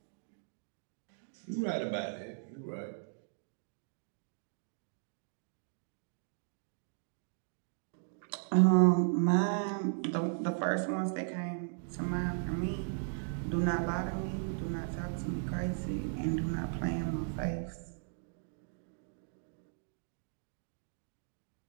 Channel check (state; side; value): silent; left; digital silence